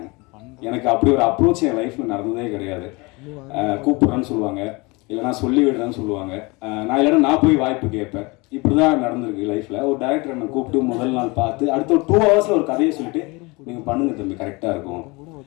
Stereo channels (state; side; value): quieter; right; 26.0 dB